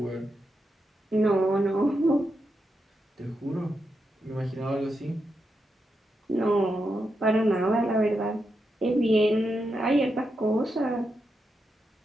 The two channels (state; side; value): normal; both; correlation 0.85